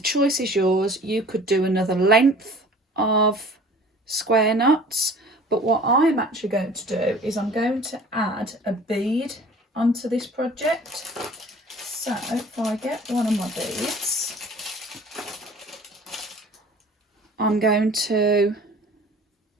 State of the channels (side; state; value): both; normal; correlation 0.47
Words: is yours. You could do another length of square knots, but what I'm actually going to do is I'm going to add a bead onto this project. So if I get one of my beads, I'm going to